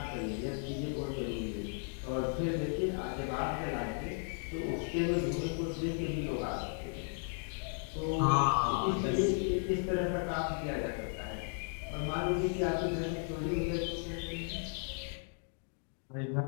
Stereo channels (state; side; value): silent; right; 54 dB below the other